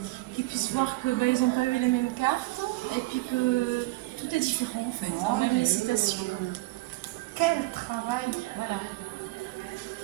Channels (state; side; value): quieter; left; 20.4 dB